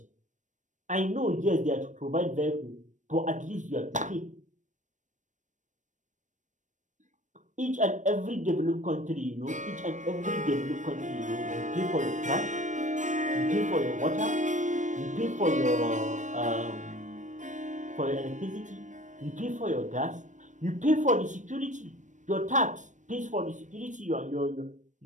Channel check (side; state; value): left; late; 0.36 ms